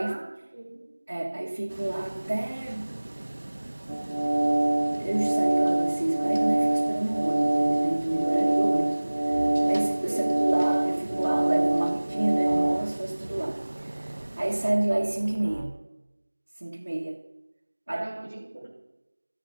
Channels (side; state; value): both; inverted; correlation -1.00